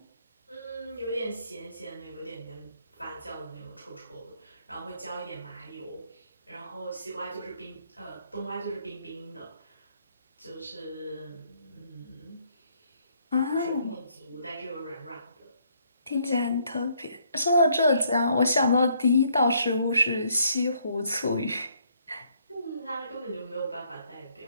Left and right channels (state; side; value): inverted; both; correlation -0.68